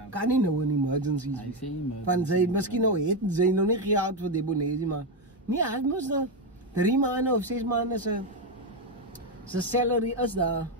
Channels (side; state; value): both; normal; correlation 0.08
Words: kan nie nou 'n emergency Hy sê emergency. Van sy, miskien nou het sy nou nie geld vir debonaires, maar nee, hy moes nou 3 maande of 6 maande sy salary is daar